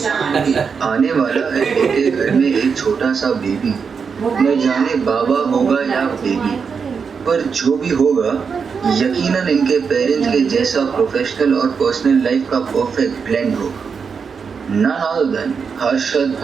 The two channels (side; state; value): left; quieter; 5.9 dB